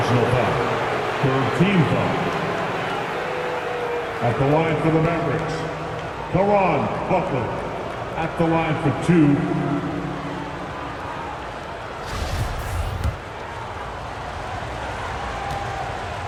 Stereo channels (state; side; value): identical; both; correlation 1.00